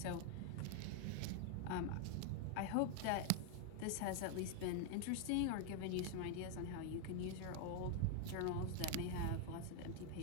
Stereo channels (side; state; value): both; different; correlation 0.00